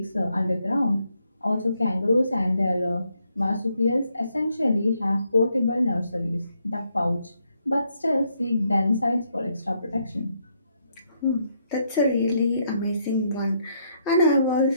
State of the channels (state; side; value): inverted; both; correlation -0.75